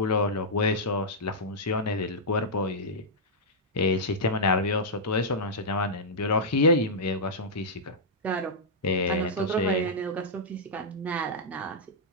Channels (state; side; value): normal; both; correlation -0.09